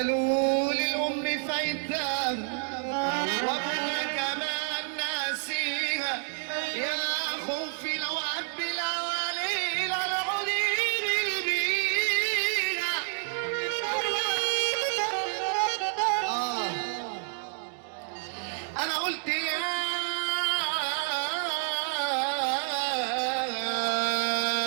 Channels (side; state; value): left; silent; 59 dB below the other